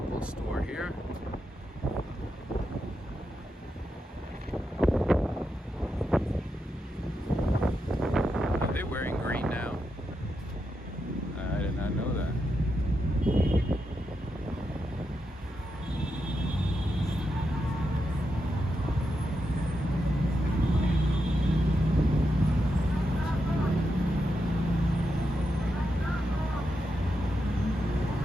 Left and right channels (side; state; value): both; normal; correlation 0.85